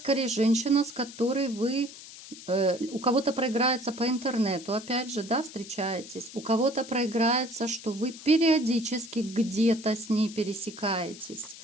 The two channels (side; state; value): left; noise; hiss, 16 dB below the sound